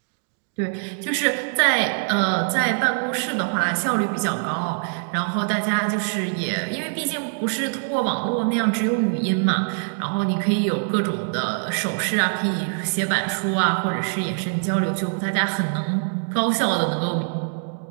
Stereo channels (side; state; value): left; silent; digital silence